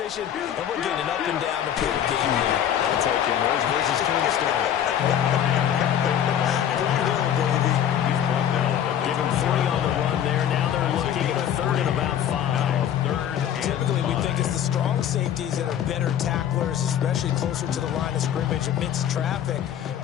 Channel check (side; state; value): right; quieter; 9.8 dB